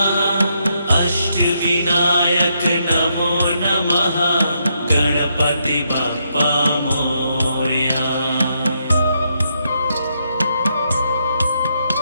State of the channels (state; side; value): inverted; both; correlation -0.78